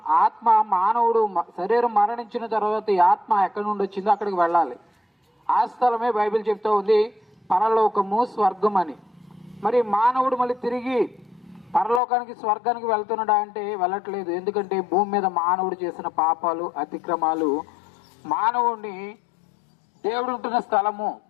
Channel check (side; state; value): right; drops out; at 12.0 s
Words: ఆత్మ, మానవుడు శరీరం మరణించిన తర్వాత ఈ ఆత్మ ఎక్కడి నుండి వచ్చిందో అక్కడికి వెళ్ళాలి. ఆ స్థలమే బైబిల్ చెప్తూ ఉంది పరలోకము, స్వర్గం అని. మరి మానవుడు మళ్ళీ తిరిగి పరలోకానికి, స్వర్గానికి వెళ్తున్నాడా అంటే వెళ్ళట్లేదు. ఎందుకంటే భూమి మీద మానవుడు చేసిన పాపాలు, అతిక్రమాలు మానవుడిని దేవుడు ఉంటున్న స్థలము